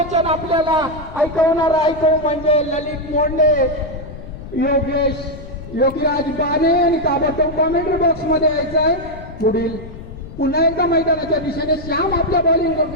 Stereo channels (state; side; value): noise; left; rumble, 14 dB below the sound